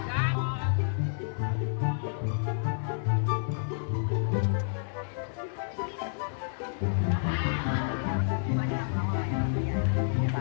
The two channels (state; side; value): silent; right; digital silence